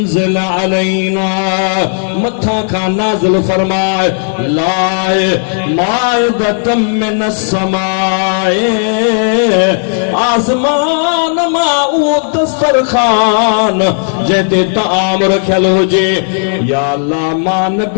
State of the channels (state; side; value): silent; right; digital silence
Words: अलैना, मथा खां नाज़िल फरमाए, लाए माइदतम मिनस समाए, आसमान मां उहो दस्तरखान जंहिंते ताम रखियल हुजे। या अल्लाह, मां